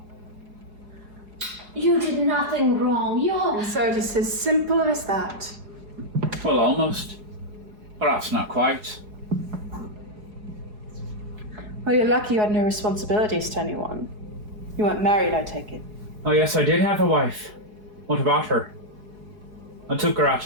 You did nothing wrong. And so it's as simple as that. Well, almost. Perhaps not quite. Well, you're lucky you had no responsibilities to anyone. You weren't married, I take it. Oh yes, I did have a wife. What about her? I took her out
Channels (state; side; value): late; left; 4.8 ms